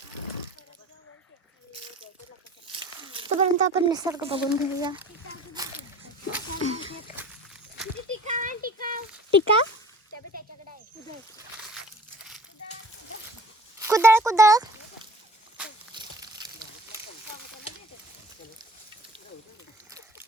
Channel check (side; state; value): both; normal; correlation 0.45